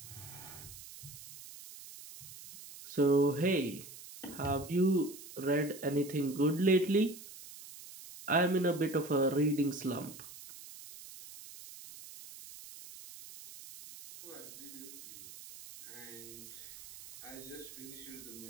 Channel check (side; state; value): right; noise; hiss, 15 dB below the sound